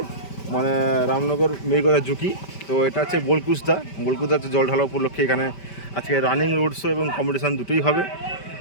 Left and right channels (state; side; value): late; right; 5.1 ms